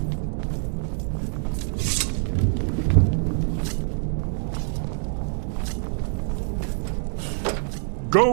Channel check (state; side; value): silent; left; 62 dB below the other